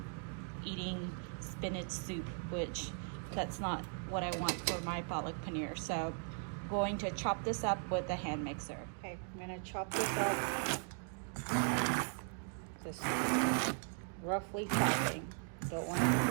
eating spinach soup, which that's not what I want for my palak paneer. So I'm going to chop this up with a hand mixer. Okay, I'm gonna chop this up. Just roughly chopping. Don't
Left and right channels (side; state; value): left; silent; 52 dB below the other